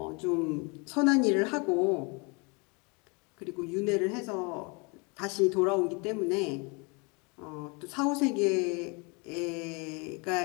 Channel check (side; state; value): right; quieter; 30.8 dB